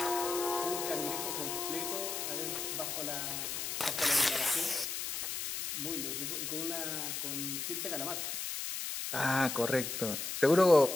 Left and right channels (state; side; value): noise; left; hiss, 4 dB below the sound